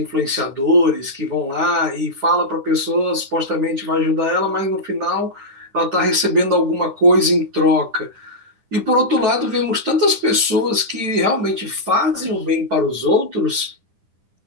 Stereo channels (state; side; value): late; left; 10 ms